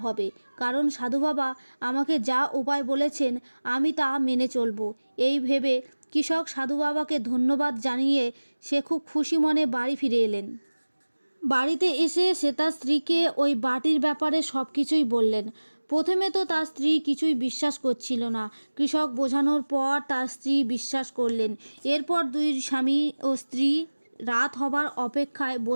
হবে, কারণ সাধু বাবা আমাকে যা উপায় বলেছেন আমি তা মেনে চলব। এই ভেবে কৃষক সাধু বাবাকে ধন্যবাদ জানিয়ে সে খুব খুশি মনে বাড়ি ফিরে এলেন। বাড়িতে এসে সে তার স্ত্রীকে ওই বাটির ব্যাপারে সব কিছুই বললেন। প্রথমে তো তার স্ত্রী কিছুই বিশ্বাস করছিল না। কৃষক বোঝানোর পর তার স্ত্রী বিশ্বাস করলেন। এরপর দুই স্বামী ও স্ত্রী রাত হবার অপেক্ষায়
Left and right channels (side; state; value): both; inverted; correlation -1.00